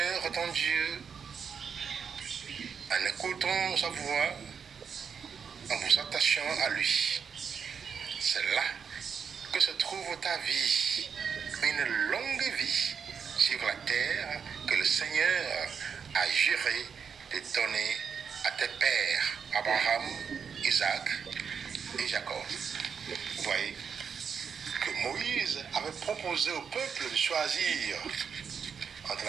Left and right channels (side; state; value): left; quieter; 6.6 dB